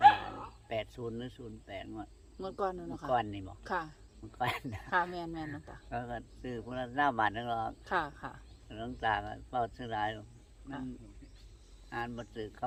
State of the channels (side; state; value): both; identical; correlation 1.00